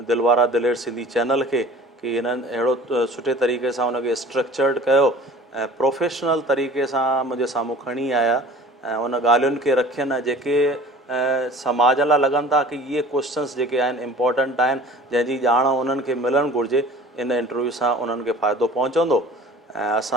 दिलवारा दिलेर सिंधी चैनल खे कि हिननि अहिड़ो सुठे तरीक़े सां हुनखे स्ट्रक्चर्ड कयो ऐं प्रोफेशनल तरीक़े सां मुंहिंजे साम्हूं खणी आया ऐं उन ॻाल्हियुनि खे रखियनि जेके समाज लाइ लॻनि था कि इहे क्वेश्चन्स जेके आहिनि इम्पोर्टेंट आहिनि, जंहिंजी ॼाण उन्हनि खे मिलणु घुरिजे। इन इंटरव्यू सां उन्हनि खे फ़ाइदो पहुचंदो ऐं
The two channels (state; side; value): normal; both; correlation 0.46